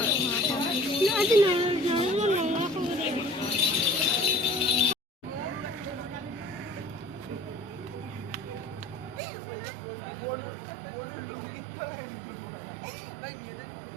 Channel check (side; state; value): left; drops out; at 9.2 s